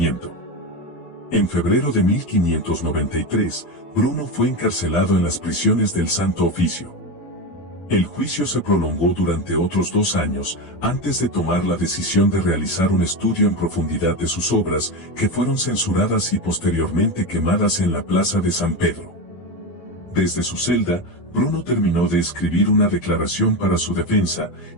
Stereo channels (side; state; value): right; late; 12 ms